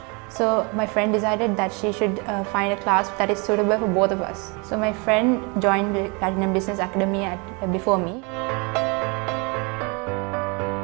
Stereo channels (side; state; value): left; quieter; 31.0 dB